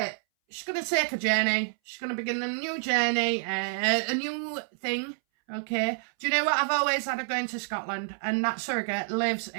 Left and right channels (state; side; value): silent; left; 59 dB below the other